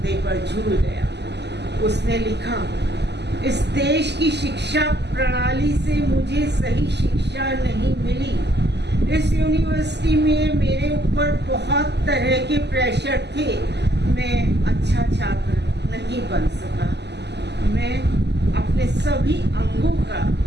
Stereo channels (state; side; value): late; left; 0.50 ms